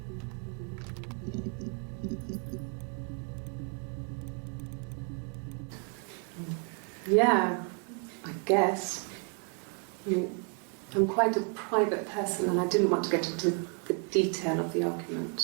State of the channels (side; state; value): left; quieter; 39.2 dB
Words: Yeah, I guess. I mean, I'm quite a private person and I didn't want to get into the detail of the